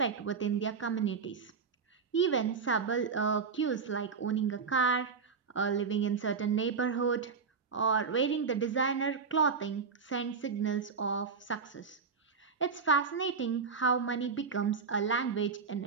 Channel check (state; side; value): quieter; left; 5.5 dB